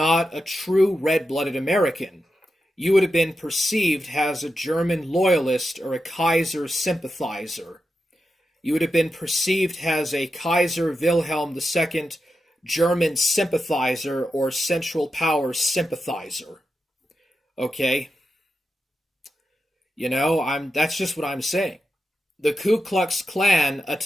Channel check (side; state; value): both; normal; correlation 0.89